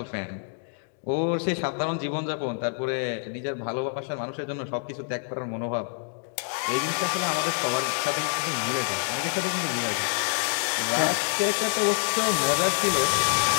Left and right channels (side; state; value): right; silent; 60 dB below the other